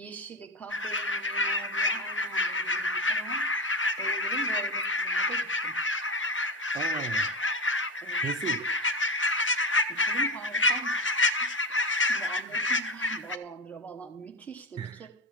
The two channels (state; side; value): normal; both; correlation 0.18